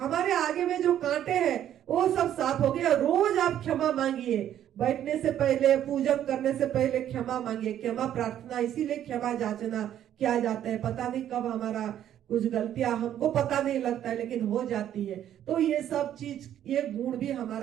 आगे में जो कांटे हैं वो सब साफ हो गया। रोज आप क्षमा मांगिए, बैठने से पहले, पूजन करने से पहले क्षमा मांगिए। क्षमा प्रार्थना इसीलिए क्षमा याचना किया जाता है, पता नहीं कब हमारा कुछ गलतियां हमको पता नहीं लगता है लेकिन हो जाती है। तो ये सब चीज, ये गुण भी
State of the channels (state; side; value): quieter; left; 10.9 dB